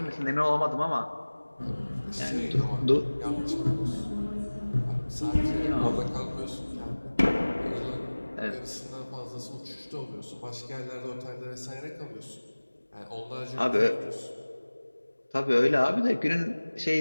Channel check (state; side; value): inverted; both; correlation -1.00